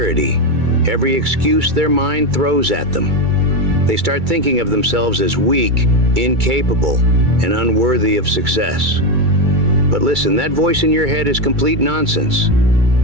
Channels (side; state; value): left; late; 2.3 ms